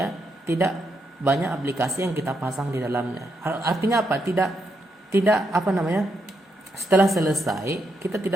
tidak banyak aplikasi yang kita pasang di dalamnya. Artinya apa? Tidak apa namanya? Setelah selesai kita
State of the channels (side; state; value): both; normal; correlation 0.80